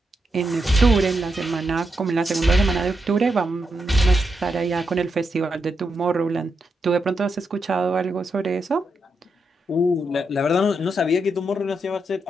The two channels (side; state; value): both; normal; correlation 0.84